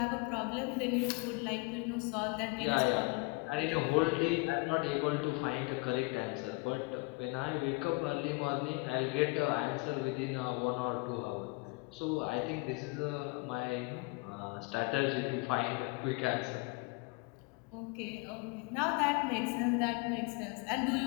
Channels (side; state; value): right; quieter; 28.2 dB